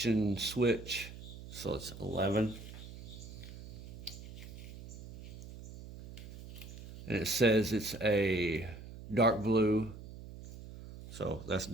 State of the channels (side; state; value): right; noise; hum, 13 dB below the sound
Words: switch. So it's 11. And it says it's a dark blue. So that's